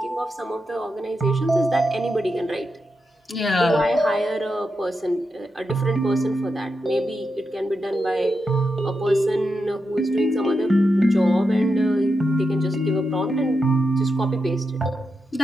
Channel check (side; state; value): both; normal; correlation 0.87